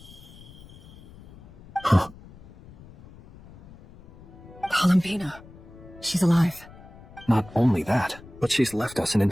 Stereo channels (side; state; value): left; noise; rumble, 20 dB below the sound